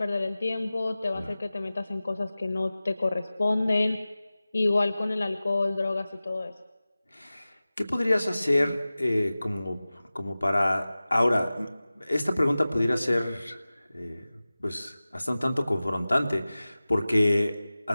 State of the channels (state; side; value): inverted; both; correlation -0.97